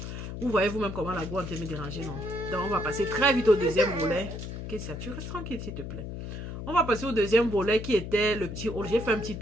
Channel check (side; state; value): left; noise; hum, 7 dB below the sound